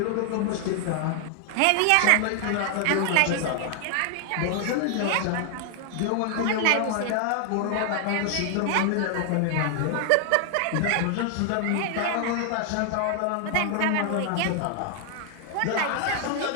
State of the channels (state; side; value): different; both; correlation 0.00